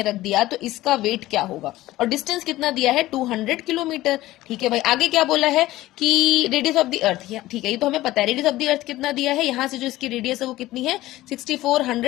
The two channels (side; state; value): right; quieter; 16.5 dB